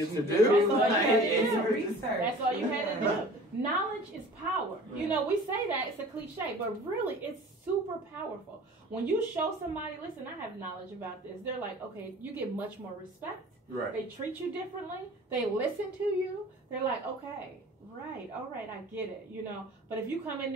to do. That's all you had to do. Research. That's all you had to do. Knowledge is power. Right. You know, we say that, it's a cliche, but really it's super powerful. When you show somebody, listen, I have knowledge about this, they're like, okay, you get much more respect. Right. They treat you differently. They listen to you. They're like, okay, right, all right, I get it, you know. But if you come in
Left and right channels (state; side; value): normal; both; correlation 0.44